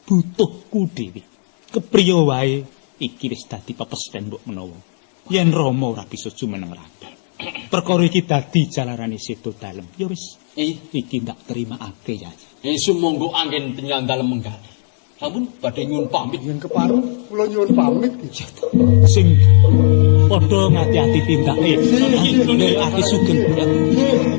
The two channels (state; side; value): silent; right; 68 dB below the other